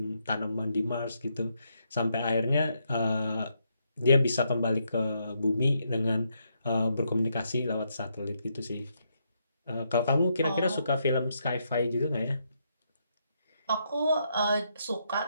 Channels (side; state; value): both; inverted; correlation -0.78